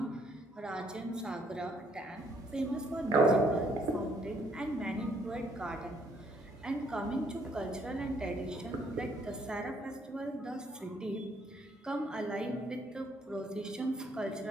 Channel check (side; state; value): both; normal; correlation 0.67